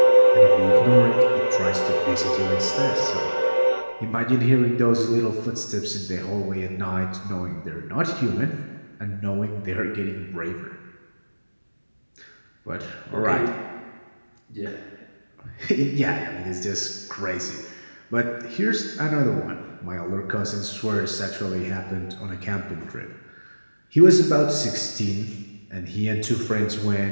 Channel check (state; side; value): inverted; both; correlation -1.00